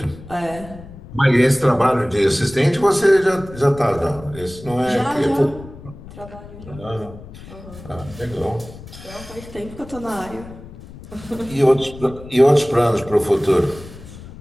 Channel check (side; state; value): left; noise; rumble, 16 dB below the sound